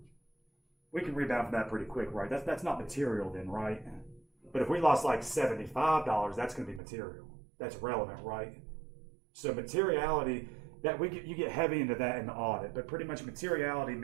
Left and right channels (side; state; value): left; drops out; at 6.8 s